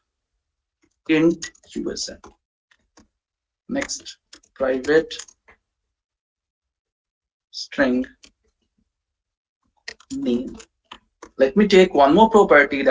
int USN. Next, private string name. Let me take one more property,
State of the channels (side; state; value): both; identical; correlation 1.00